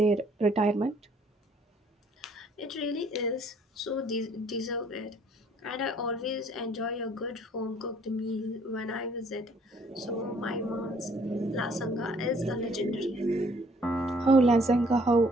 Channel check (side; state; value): both; normal; correlation 0.61